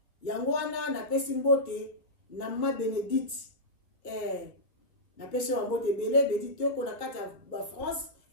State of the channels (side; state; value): right; late; 1.9 ms